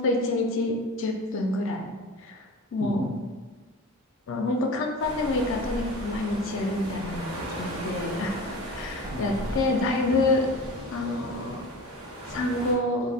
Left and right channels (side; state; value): both; normal; correlation 0.35